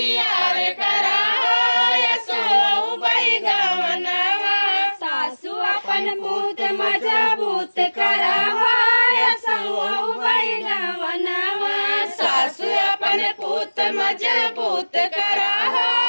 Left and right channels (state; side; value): inverted; both; correlation -1.00